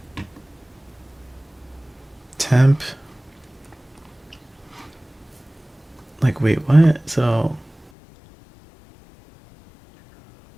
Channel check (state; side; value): drops out; right; at 7.9 s